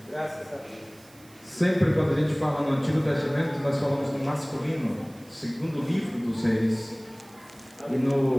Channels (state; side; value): noise; right; hiss, 25 dB below the sound